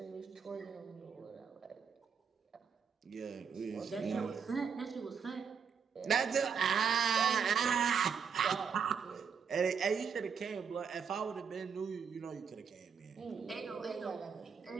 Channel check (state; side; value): quieter; left; 6.5 dB